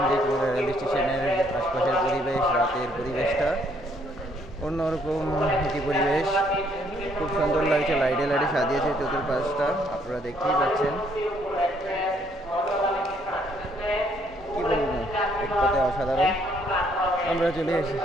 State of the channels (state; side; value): normal; both; correlation 0.67